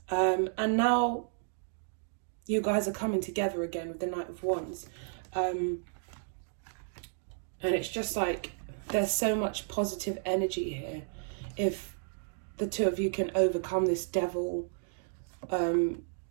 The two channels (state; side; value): silent; left; digital silence